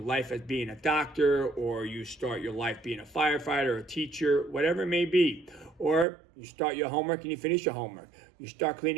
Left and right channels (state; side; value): drops out; left; at 6.1 s